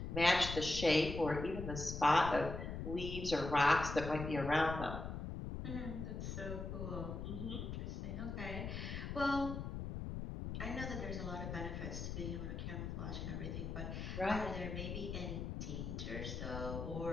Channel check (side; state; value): left; noise; rumble, 5 dB below the sound